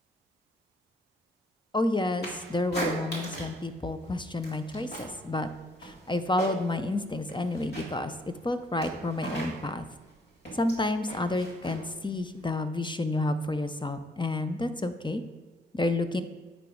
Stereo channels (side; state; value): both; normal; correlation 0.67